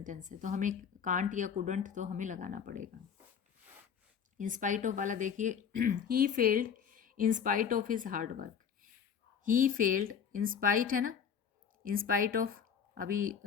है तो हमें कांट या कुडंट तो हमें लगाना पड़ेगा। इन स्पाइट ऑफ वाला देखिए, he failed in spite of his hard work. He failed, in spite है ना, इन स्पाइट ऑफ, अभी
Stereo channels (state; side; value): quieter; right; 7.4 dB